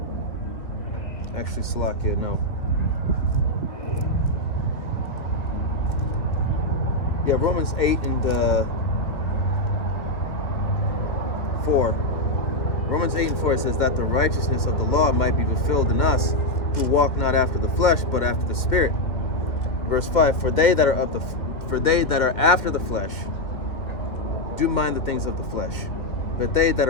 actually Salakia, no. Yeah, Romans 8 and 4. Romans 8 and 4 says that the righteousness of the law might be fulfilled in us who walk not after the flesh, but after the Spirit. Verse 5, for they that are after the flesh do mind the things of the flesh, but they that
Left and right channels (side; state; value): right; late; 2.2 ms